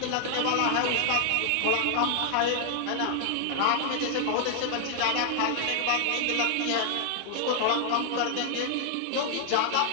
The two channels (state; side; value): different; both; correlation 0.00